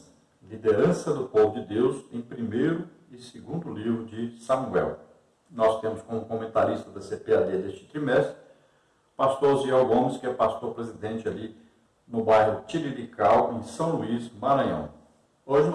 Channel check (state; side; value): identical; both; correlation 1.00